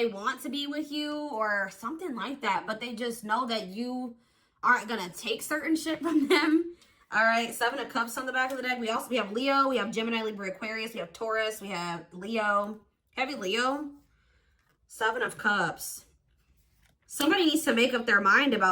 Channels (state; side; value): identical; both; correlation 1.00